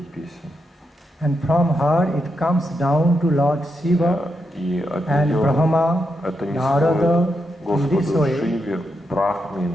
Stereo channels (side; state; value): both; normal; correlation 0.84